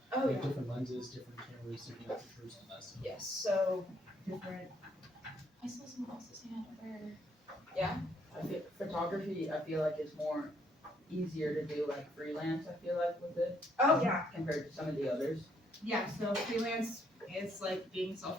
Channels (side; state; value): both; normal; correlation 0.69